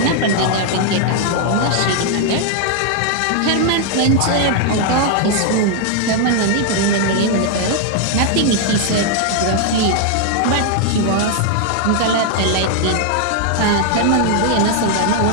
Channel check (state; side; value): different; both; correlation 0.00